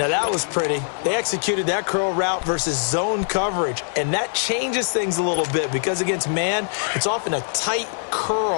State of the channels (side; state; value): right; silent; 64 dB below the other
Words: that was pretty. They executed that curl route versus zone coverage, and that changes things a little bit because against man, it's often a tight